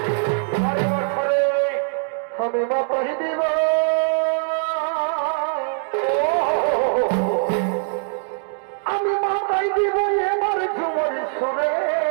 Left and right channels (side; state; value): left; silent; 64 dB below the other